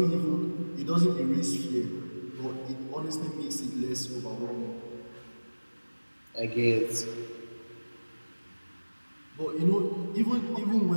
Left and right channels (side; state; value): both; inverted; correlation -1.00